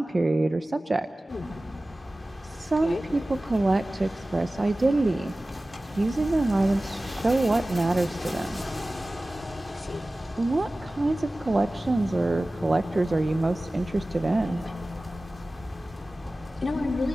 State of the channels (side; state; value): both; normal; correlation 0.97